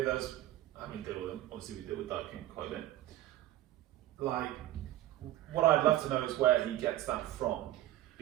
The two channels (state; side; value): quieter; left; 14.4 dB